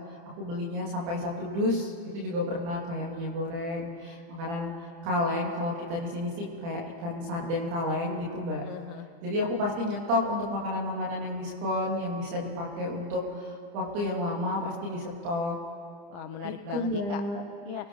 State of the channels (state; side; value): late; left; 30 ms